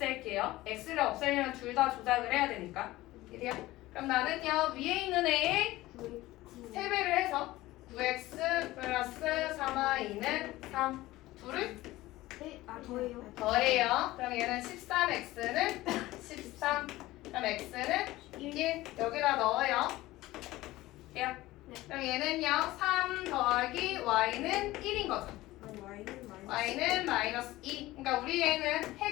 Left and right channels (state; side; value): quieter; right; 17.7 dB